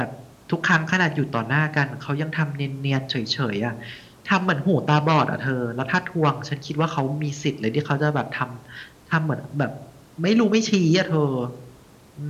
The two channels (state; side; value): identical; both; correlation 1.00